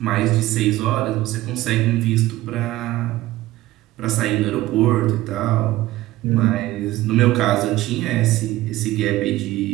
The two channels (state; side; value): quieter; left; 16.6 dB